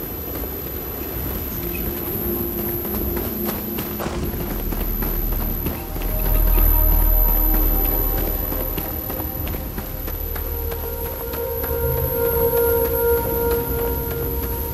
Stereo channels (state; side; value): identical; both; correlation 1.00